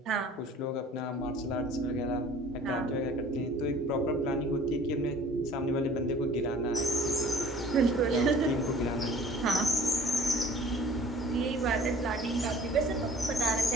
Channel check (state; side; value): normal; both; correlation 0.49